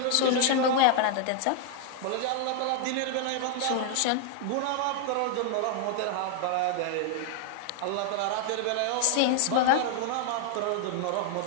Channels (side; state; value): both; different; correlation 0.00